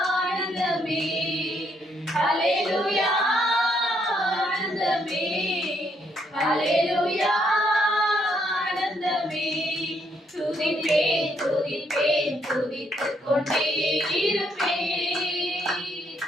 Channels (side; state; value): both; normal; correlation 0.73